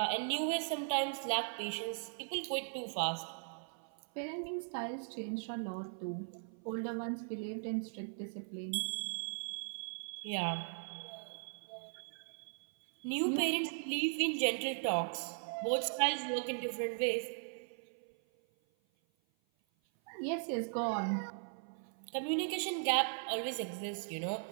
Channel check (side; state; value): left; silent; 52 dB below the other